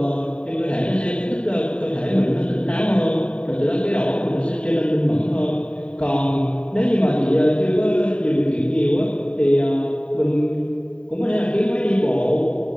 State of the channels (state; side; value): late; right; 0.057 ms